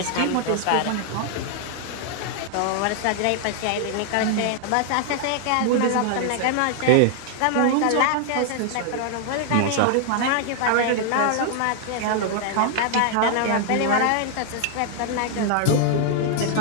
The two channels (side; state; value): both; different; correlation 0.00